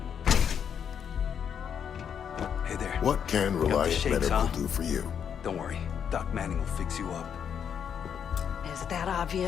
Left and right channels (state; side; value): quieter; right; 7.9 dB